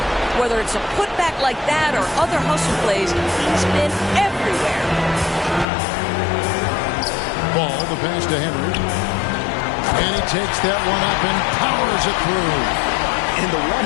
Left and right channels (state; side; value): drops out; right; at 5.7 s